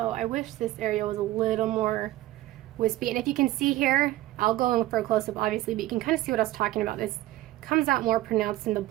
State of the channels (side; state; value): left; quieter; 16.1 dB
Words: I wish this area was a little more wispy. And if you can see here, I'll go in for a close-up obviously, but you can kind of see what I was talking about. This comes out more pronounced in the